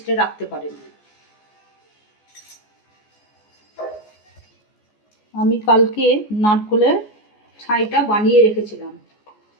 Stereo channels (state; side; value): late; right; 14 ms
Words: রাখতে পারেন। আমি কালকে নারকেলের ছাইটা বানিয়ে রেখেছিলাম,